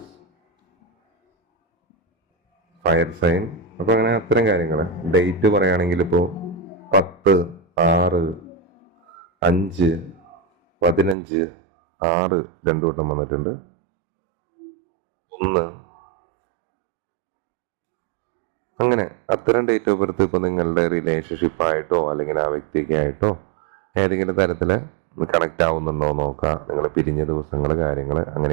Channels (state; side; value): drops out; left; at 11.2 s